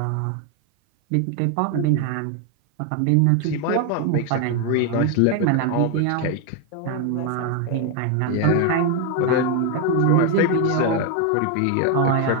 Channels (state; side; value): different; both; correlation 0.01